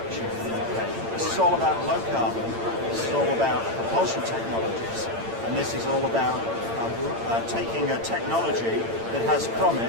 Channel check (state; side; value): late; left; 8.8 ms